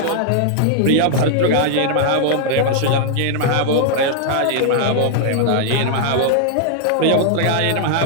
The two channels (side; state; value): both; different; correlation 0.00